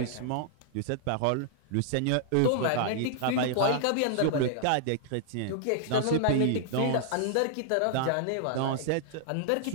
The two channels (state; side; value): different; both; correlation -0.01